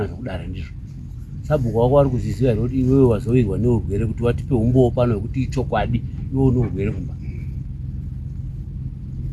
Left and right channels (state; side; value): identical; both; correlation 1.00